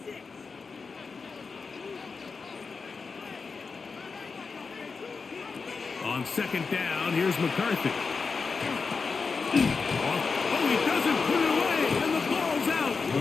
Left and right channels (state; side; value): quieter; right; 4.8 dB